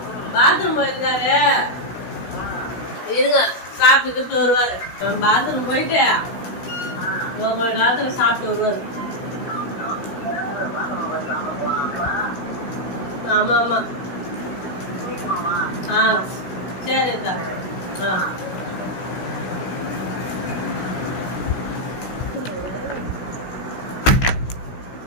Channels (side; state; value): right; late; 16 ms